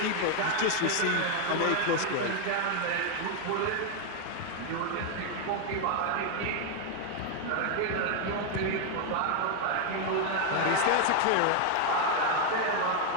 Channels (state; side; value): different; both; correlation 0.00